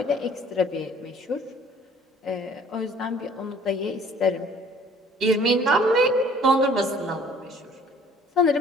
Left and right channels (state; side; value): normal; both; correlation 0.54